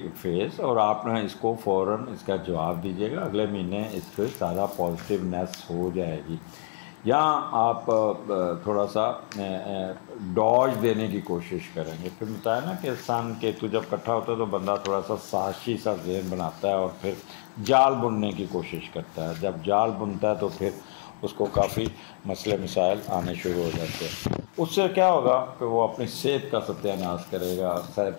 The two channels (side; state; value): right; silent; digital silence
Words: فیز، اور آپ نے اس کو فوراً اس کا جواب دیجیے گا، اگلے مہینے اس کے سارا پازیٹیونیس ہو جائے گی. یہاں آپ تھوڑا سا ڈاج دینے کی کوشش کریں گے. پھر بتایا نا کہ سن کیتو جب اکٹھا ہوتا ہے تو بندہ تھوڑا سا سازشی سا ذہن بناتا ہے اور پھر جال بننے کی کوشش کرتا ہے. جب جال بنتا ہے تو پھر اس کو کافی مسئلے مسائل آنے شروع ہو جاتے ہیں. اس سے کیا ہوگا کہ وہ اپنی صحت کا ستیہ ناش کرے گا،